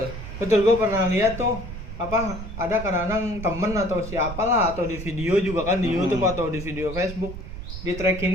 Gue pernah lihat tuh ada kadang-kadang temen atau siapalah, atau di video juga kan, di YouTube atau di video Facebook, di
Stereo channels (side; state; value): right; noise; rumble, 9 dB below the sound